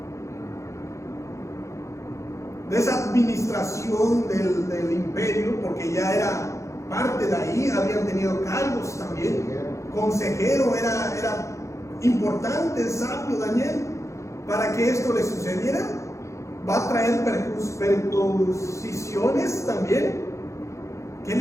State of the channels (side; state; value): right; late; 0.14 ms